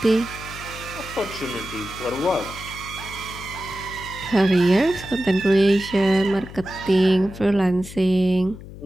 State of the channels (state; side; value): noise; left; hum, 14 dB below the sound